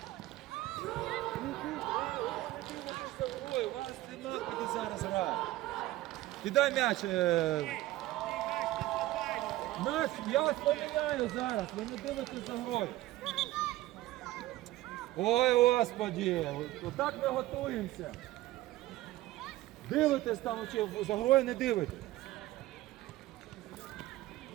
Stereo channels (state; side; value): quieter; left; 16.6 dB